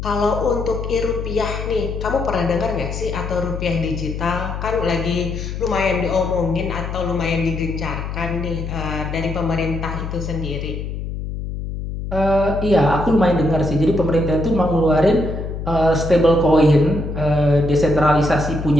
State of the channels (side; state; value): left; noise; hum, 6 dB below the sound